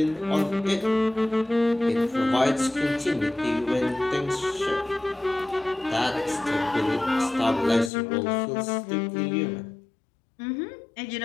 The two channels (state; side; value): drops out; right; at 7.9 s